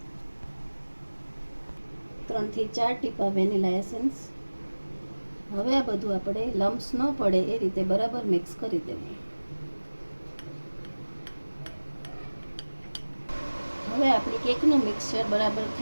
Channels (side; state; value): both; inverted; correlation -1.00